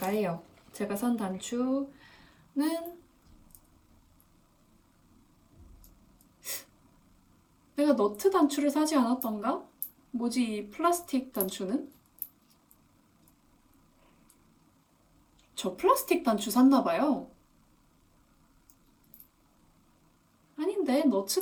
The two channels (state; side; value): identical; both; correlation 1.00